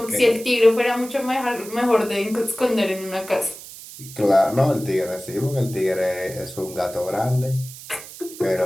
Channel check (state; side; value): noise; right; hiss, 15 dB below the sound